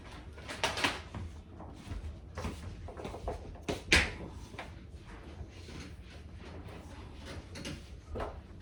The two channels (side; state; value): both; identical; correlation 1.00